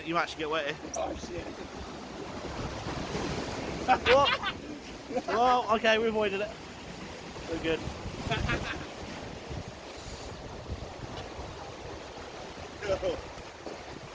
You might actually get wet here. Oh shit. What? Well, okay, we avoided it. We're good.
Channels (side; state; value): both; identical; correlation 1.00